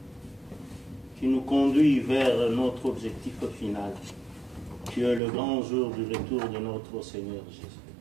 qui nous conduit vers notre objectif final, qui est le grand jour du retour de notre Seigneur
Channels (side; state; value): left; drops out; at 5.2 s